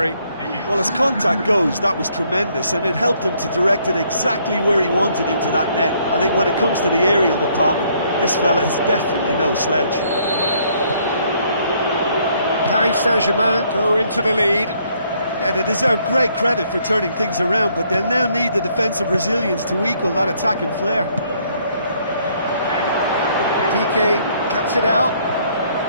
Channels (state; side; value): inverted; both; correlation -0.67